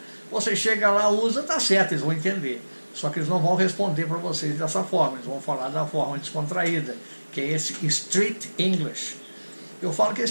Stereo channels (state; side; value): inverted; both; correlation -1.00